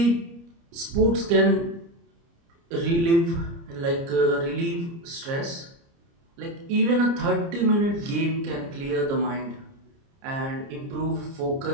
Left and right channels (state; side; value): late; left; 30 ms